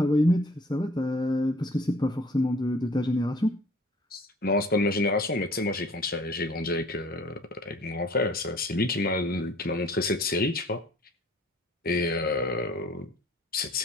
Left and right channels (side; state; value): both; normal; correlation 0.51